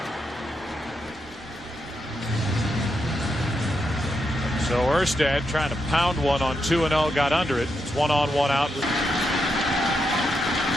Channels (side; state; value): both; normal; correlation 0.83